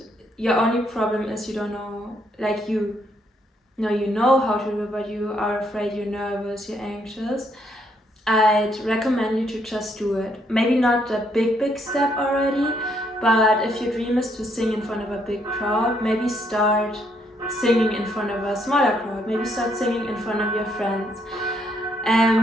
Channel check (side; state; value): both; normal; correlation 0.72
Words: your only problem is you don't know, like you know how to do it, but you are afraid, you're nervous, you're anxious, I'd recommend you to just do it. Maybe not the big step already, but if your dream is to sing in front of a big crowd, maybe start singing in front of a smaller crowd. Maybe start singing in front of your friends.